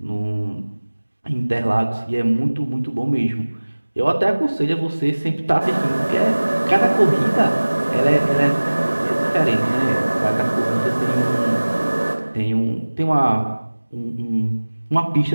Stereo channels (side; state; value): both; inverted; correlation -1.00